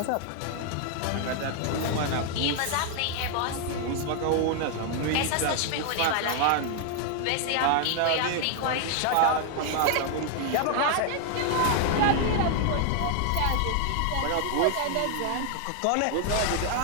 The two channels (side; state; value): both; different; correlation 0.00